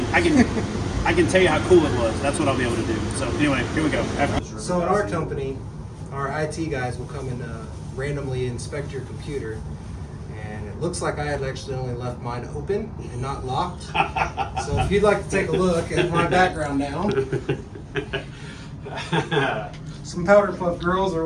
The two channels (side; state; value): both; identical; correlation 1.00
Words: I can tell you how cool it was. That's what I'll be able to do. So anyway, here we go. So in our company, our IT guys will come and randomly inspect your computer. And it looks like I had actually only left mine open and not locked. So if you'd like to take a look at my background now. Some powder puff girls or